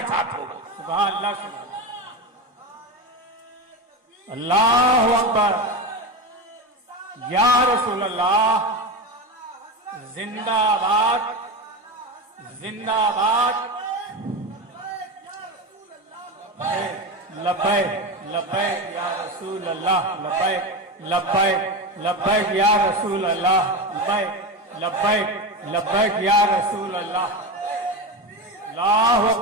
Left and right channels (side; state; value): both; normal; correlation 0.20